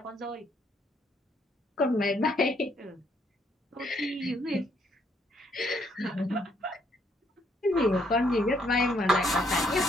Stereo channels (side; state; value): both; normal; correlation 0.70